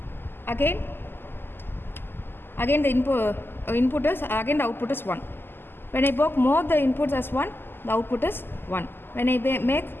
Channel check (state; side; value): late; right; 0.10 ms